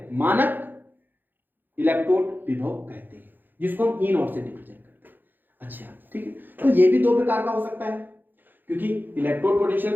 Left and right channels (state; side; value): late; left; 0.090 ms